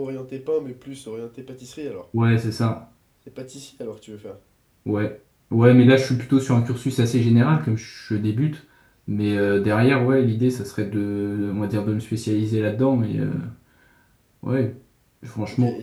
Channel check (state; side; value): identical; both; correlation 1.00